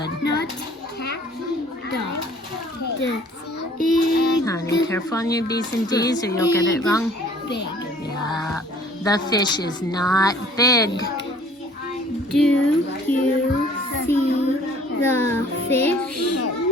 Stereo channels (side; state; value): both; normal; correlation 0.53